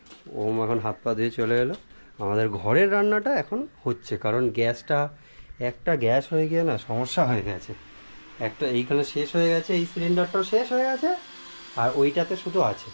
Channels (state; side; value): inverted; both; correlation -1.00